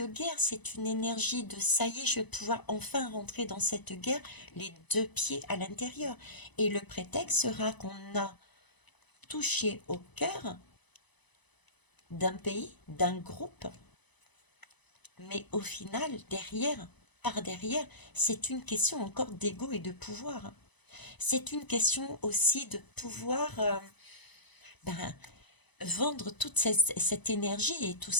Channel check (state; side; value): late; right; 1.0 ms